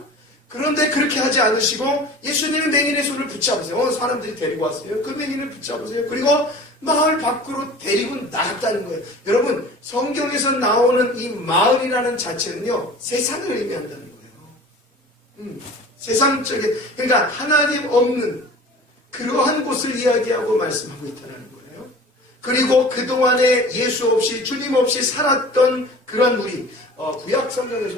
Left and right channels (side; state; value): both; normal; correlation 0.41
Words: 그런데 그렇게 하지 않으시고 예수님이 맹인의 손을 붙잡으세요. 사람들이 데리고 왔어요. 그 맹인을 붙잡으세요. 그리고 마을 밖으로 데리고 나갔다는 거예요. 여러분, 성경에서 나오는 이 마을이라는 자체는요, 세상을 의미한다는 거예요. 세상적인, 그러니까 하나님 없는 그러한 곳을 이야기하고 말씀하고 있다는 거예요. 그리고 그동안에 예수 없이, 주님 없이 살았던 그런 우리, 구약